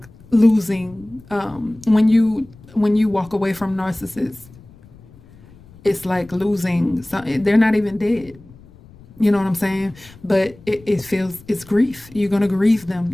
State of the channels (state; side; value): noise; left; rumble, 24 dB below the sound